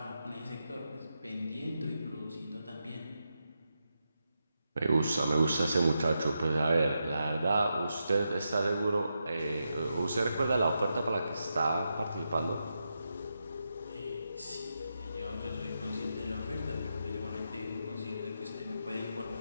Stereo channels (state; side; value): inverted; both; correlation -0.86